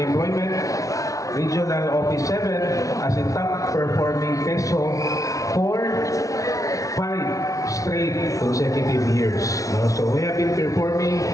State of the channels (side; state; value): right; late; 0.17 ms